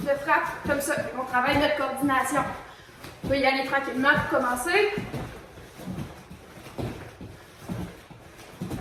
frappe comme ça. On travaille notre coordination. On va y aller tranquillement pour commencer.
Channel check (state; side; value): identical; both; correlation 1.00